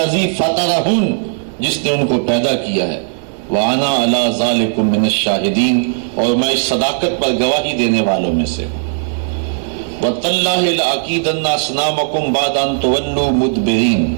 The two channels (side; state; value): left; silent; digital silence